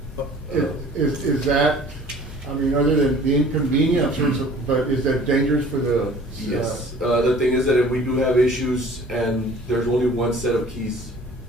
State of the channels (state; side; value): normal; both; correlation 0.49